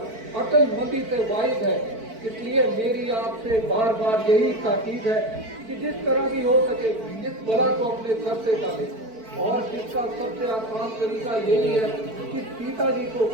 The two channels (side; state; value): left; late; 4.5 ms